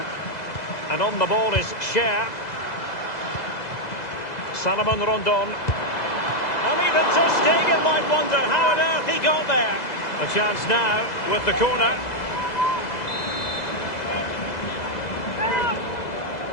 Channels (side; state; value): right; late; 2.0 ms